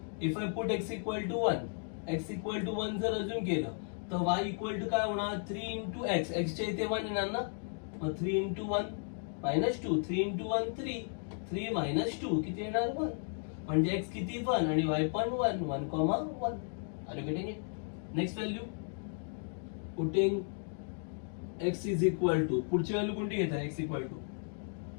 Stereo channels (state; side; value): silent; right; 55 dB below the other